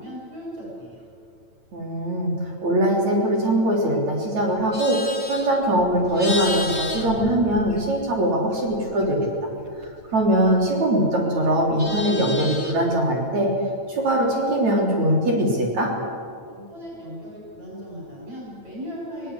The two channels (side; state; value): left; late; 9.0 ms